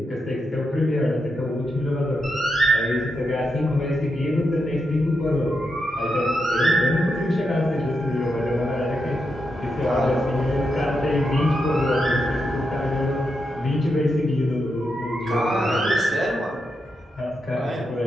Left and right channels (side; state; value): both; normal; correlation 0.85